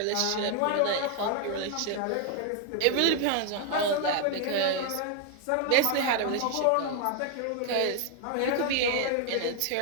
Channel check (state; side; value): different; both; correlation 0.00